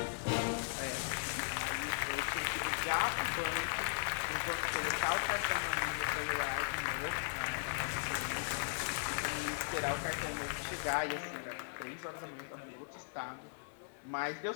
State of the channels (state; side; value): silent; right; digital silence